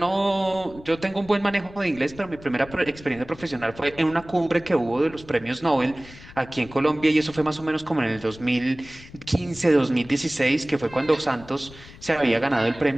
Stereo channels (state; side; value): noise; left; rumble, 19 dB below the sound